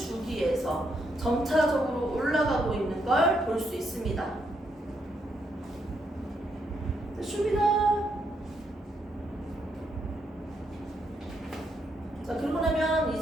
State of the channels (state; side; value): normal; both; correlation 0.77